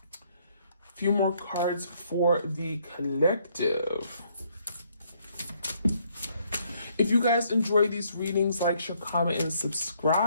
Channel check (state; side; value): inverted; both; correlation -0.69